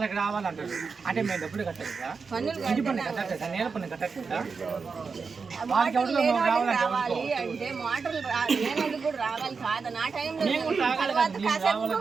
రావాలంటారు అంటే మేము డబ్బులు కట్టలేదా పన్నులు ఇంటి పన్ను కట్టలేదా నేల పన్ను కట్టలేదా వాళ్ళకి మోటార్లు ఎవరిలో లేని వాళ్ళకి రావాలంటే రావాలి అంటే మోటార్లు లేనందుకు కూడా రావాలి కాదు నా టైంలో మేము కూడా రావాలి తర్వాత కదా, మేము కాసేపు రావాలి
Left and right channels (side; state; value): left; quieter; 5.1 dB